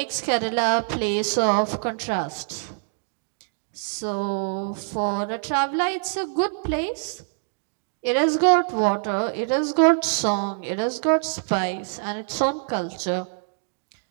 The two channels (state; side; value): silent; left; digital silence